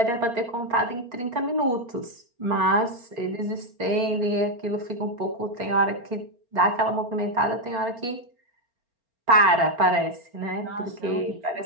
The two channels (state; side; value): late; left; 4.4 ms